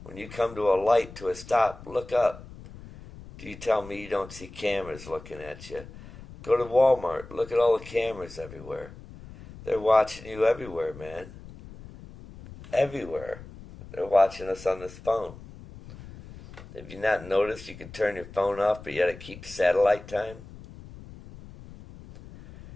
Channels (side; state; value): left; noise; rumble, 17 dB below the sound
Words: When you come to a light, to a stop, look up. Do you tell me you don't see cameras looking at you? Go to Walmart. Look at all the cameras everywhere. They're watching you everywhere, man. Everywhere. They're watching us on this phone. Have you not noticed you can turn your phone off, but yet it keeps satellite time?